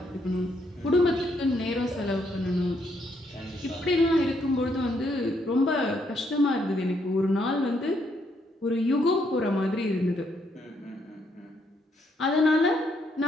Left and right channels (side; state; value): both; normal; correlation 0.74